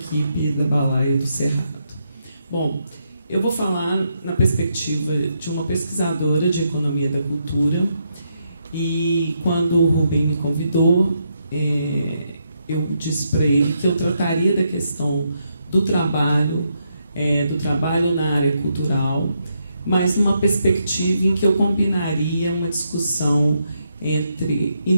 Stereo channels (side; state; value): both; inverted; correlation -0.79